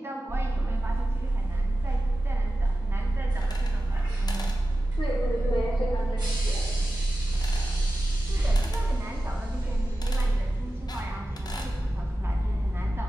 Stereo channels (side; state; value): both; normal; correlation 0.94